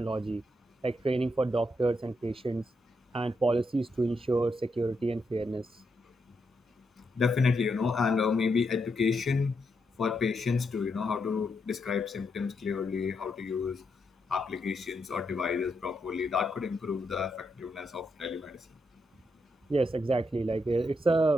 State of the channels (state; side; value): normal; both; correlation 0.81